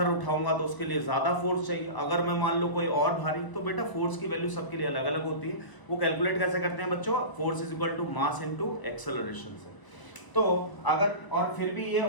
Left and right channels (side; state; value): right; late; 1.0 ms